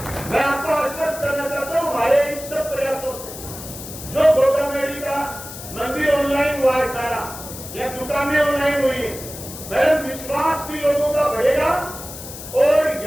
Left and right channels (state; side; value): noise; left; hiss, 12 dB below the sound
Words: मैं आपको आश्वस्त करना चाहता हूँ हमारे इन सब प्रयासों से जो गोगामेड़ी का मंदिर ऑनलाइन हुआ है सारा, या दुकानें ऑनलाइन हुई है, मेरा विश्वास भी लोगों का बढ़ेगा और